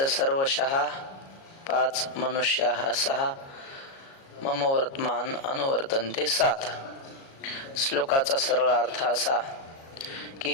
सर्वशः पाच, मनुष्याः सहा, मम वर्तमान अनुवर्तन्ते सात. श्लोकाचा सरळ अर्थ असा की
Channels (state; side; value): late; right; 37 ms